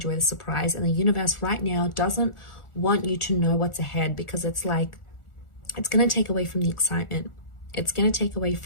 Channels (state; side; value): late; right; 1.4 ms